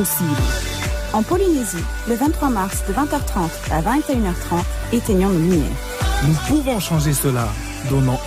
En Polynésie, le 23 mars de 20h30 à 21h30, éteignons nos lumières. Nous pouvons changer cela. Donnons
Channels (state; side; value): identical; both; correlation 1.00